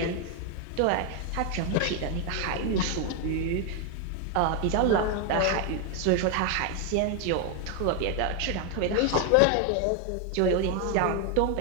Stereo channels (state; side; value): different; both; correlation 0.01